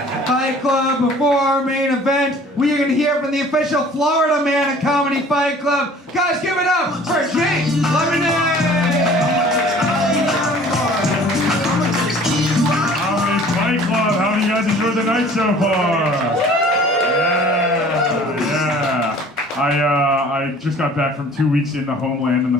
Fight Club, before our main event, we are going to hear from the official Florida man of Comedy Fight Club. Guys, give it up for James Lemonade! Comedy Fight Club, how do you guys enjoy the night so far? Yeah. I just got back from 2 weeks in the homeland in the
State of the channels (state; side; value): normal; both; correlation 0.50